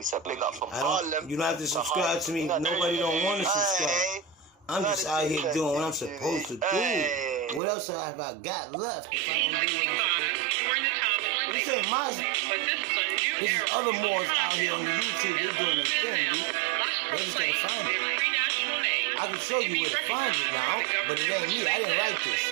So big up from Harlem. You don't have to subscribe to me. Nobody don't want to subscribe. I'm just out here doing what I'm supposed to do. What else have I got left if I don't do what I'm supposed to do? This ain't my... This is other Moors out here on the YouTube. They're doing their thing, dude. They just gotta find it. I can show you where to find it now, but it ain't me. I didn't write this.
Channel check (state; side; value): drops out; left; at 7.6 s